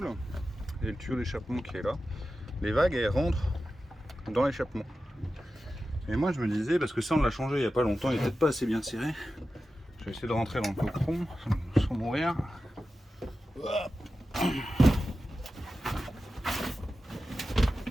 et le tuyau d'échappement qui est là, les vagues elles rentrent dans l'échappement. Et moi je me disais, parce que ça on l'a changé il n'y a pas longtemps, il n'est peut-être pas assez bien serré. Je vais essayer de rentrer dans le coqueron sans mourir. Hop.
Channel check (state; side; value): normal; both; correlation 0.93